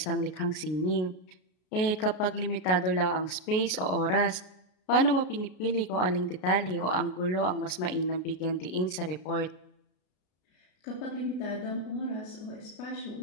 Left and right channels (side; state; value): right; late; 33 ms